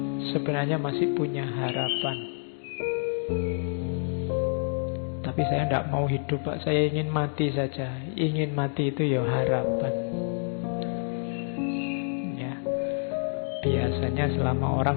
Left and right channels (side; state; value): right; silent; digital silence